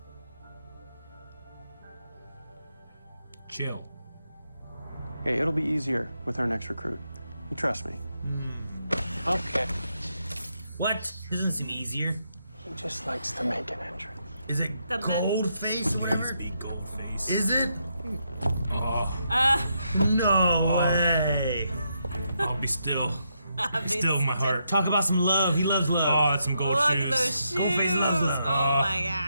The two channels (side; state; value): both; inverted; correlation -0.80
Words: Chill. Hey, it'll be easier with our next recruit. You trust me. Okay. What? Doesn't seem easier. He just likes to make an entrance. Is it Goldface or whatever? Big Goldface. Is it? Oh. No way. I'll be still. Still in my heart. Talk about some love. He loves love. Oh, that's some gold Look shoes. at those shoes. Goldface loves love. Oh my